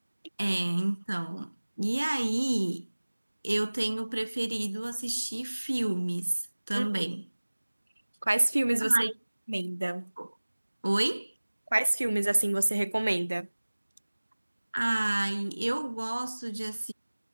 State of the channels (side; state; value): both; inverted; correlation -1.00